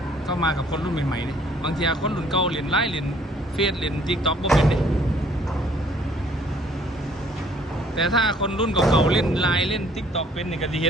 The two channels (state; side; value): normal; both; correlation 0.60